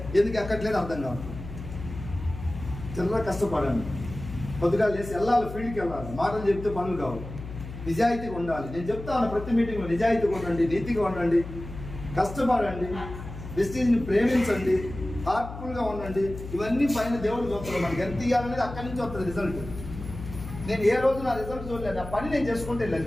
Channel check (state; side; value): noise; left; hum, 11 dB below the sound